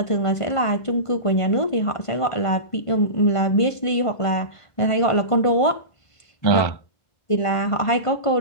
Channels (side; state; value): right; late; 1.5 ms